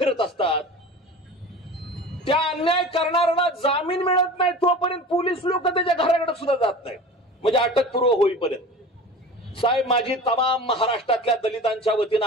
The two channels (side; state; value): both; normal; correlation 0.37